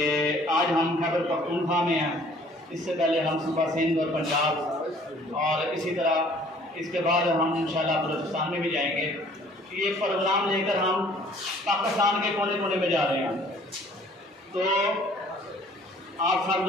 आज हम खैबर पख्तूनख्वा में हैं। इससे पहले हम सुबह सिंध और पंजाब और इसी तरह इसके बाद हम इंशाल्लाह बलूचिस्तान में भी जाएंगे। ये प्रोग्राम लेकर हम पाकिस्तान के कोने कोने में जा रहे हैं। तो आप सब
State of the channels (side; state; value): both; normal; correlation 0.55